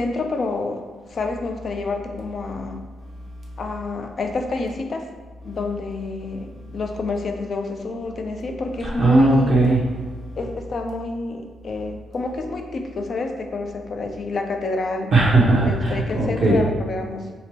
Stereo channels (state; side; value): normal; both; correlation 0.78